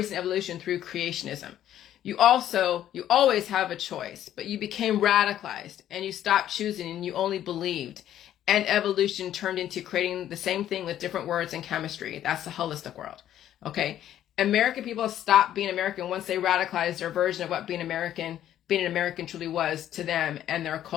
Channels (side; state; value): right; quieter; 11.5 dB